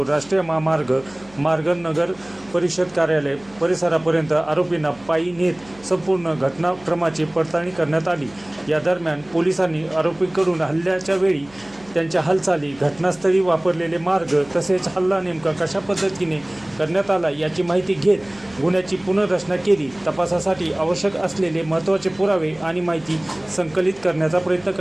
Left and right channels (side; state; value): right; noise; hum, 25 dB below the sound